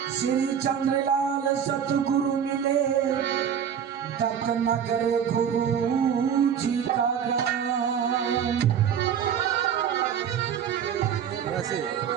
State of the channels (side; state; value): left; quieter; 8.3 dB